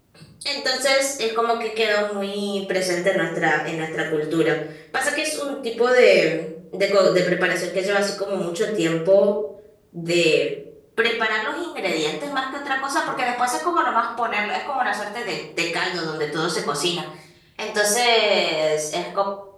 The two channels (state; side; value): identical; both; correlation 1.00